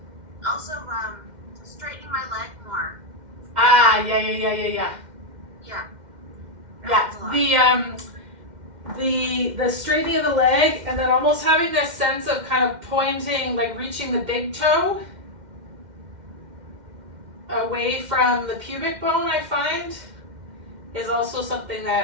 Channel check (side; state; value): left; late; 2.1 ms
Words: Also, straightening my leg more. Ah, yeah. Yeah. Yeah, the straightening of the leg, and then almost having this sense of kind of pointing, like reaching the big toe away from the pubic bone, I find, is also something